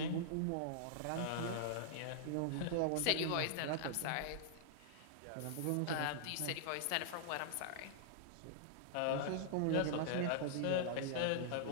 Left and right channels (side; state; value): both; different; correlation -0.01